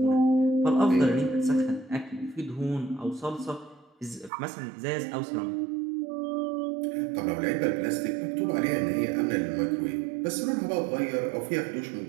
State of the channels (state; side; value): drops out; left; at 4.3 s